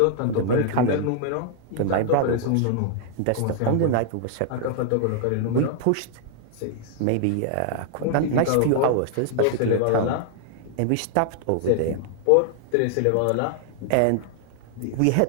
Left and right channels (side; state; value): both; different; correlation 0.00